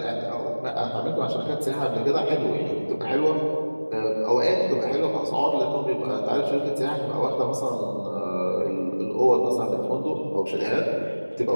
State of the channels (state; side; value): inverted; both; correlation -1.00